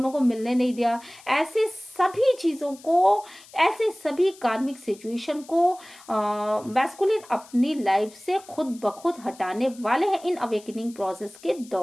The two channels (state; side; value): noise; left; hiss, 22 dB below the sound